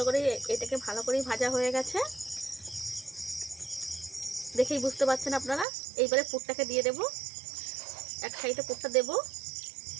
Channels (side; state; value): left; drops out; at 5.7 s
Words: করে এটাকে ভালো করেই ভাজা হয়ে গেছে, দেখেই বুঝতে পারছেন আপনারা। এইবারে পুরটাকে দিয়ে দেব, এক সাইডে পুরটা দেব,